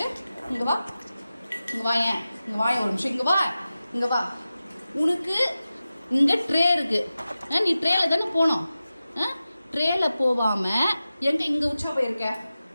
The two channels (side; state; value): both; inverted; correlation -0.94